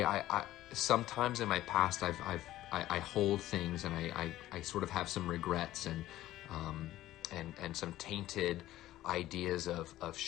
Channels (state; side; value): quieter; right; 14.8 dB